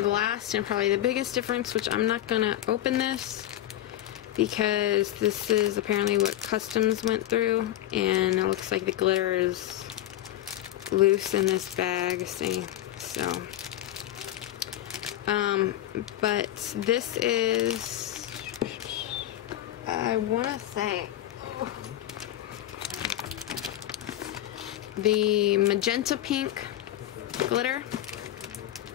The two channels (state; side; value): quieter; right; 13.3 dB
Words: last, and probably the biggest difference, which I'm not gonna open this because this is apparently what Customs went through, and it looks like the glitter is loose in this bag, see? So, but this is, I wanna say, the magenta pink glitter.